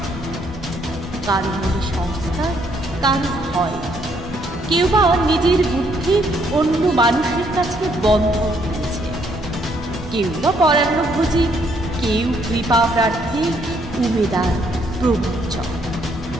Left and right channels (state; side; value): normal; both; correlation 0.70